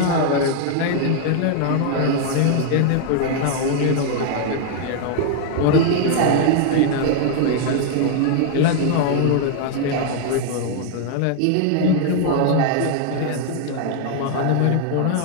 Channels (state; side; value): different; both; correlation 0.00